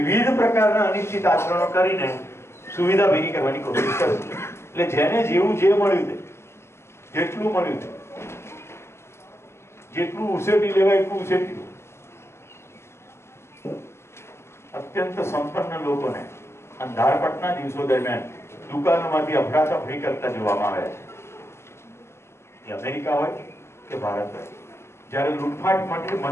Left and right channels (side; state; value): right; late; 0.13 ms